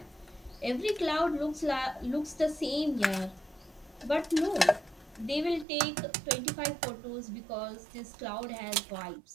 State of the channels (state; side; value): drops out; left; at 5.7 s